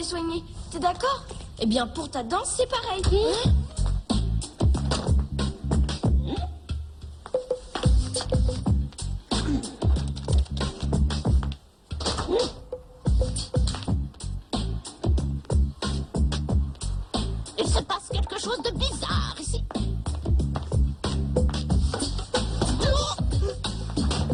soigner. T'es d'accord? Eh bien, pour ta dent, c'est pareil. Il se passe quelque chose de bizarre ici.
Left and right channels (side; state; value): both; identical; correlation 1.00